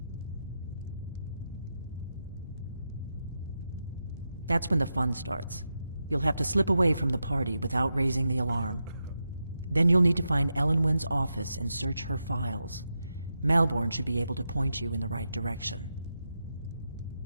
That's when the fun starts. You'll have to slip away from the party without raising the alarm. Then you'll need to find Elenwen's office and search her files. Malborn should be able to point you in the right direction.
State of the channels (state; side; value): inverted; both; correlation -0.87